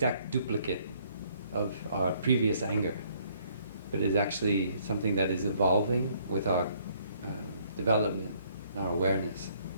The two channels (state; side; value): inverted; both; correlation -0.65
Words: duplicate of our previous anger, but is actually something that is evolving with our development and our awareness.